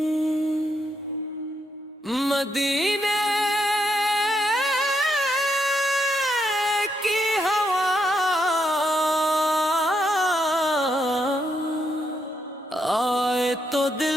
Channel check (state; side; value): normal; both; correlation 0.79